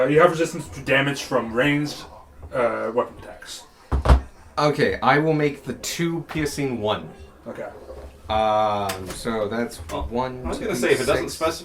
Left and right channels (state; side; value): identical; both; correlation 1.00